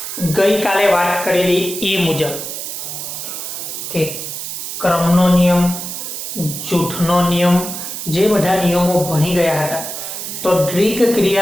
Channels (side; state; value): right; noise; hiss, 7 dB below the sound